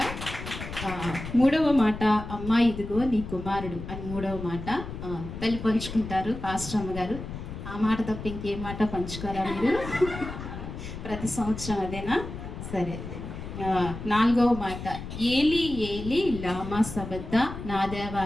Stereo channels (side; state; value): left; noise; rumble, 9 dB below the sound